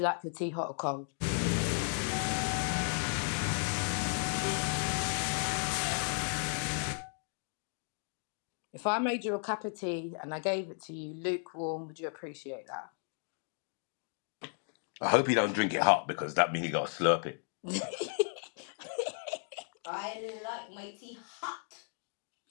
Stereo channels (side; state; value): right; silent; 55 dB below the other